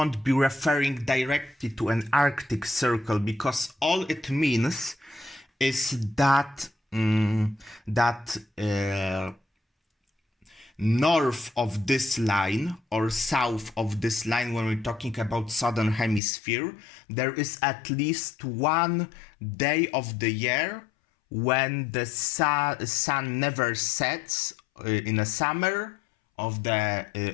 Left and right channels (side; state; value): right; drops out; at 16.2 s